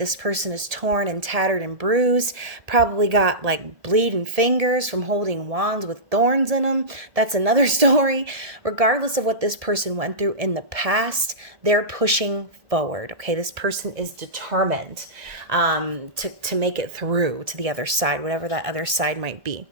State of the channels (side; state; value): left; late; 1.7 ms